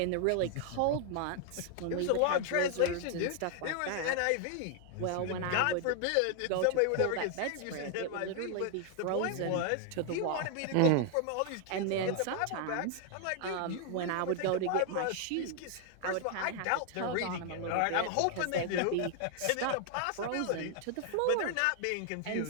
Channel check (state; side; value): different; both; correlation 0.00